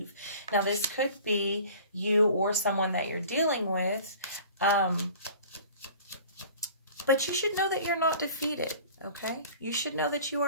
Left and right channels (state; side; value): inverted; both; correlation -0.45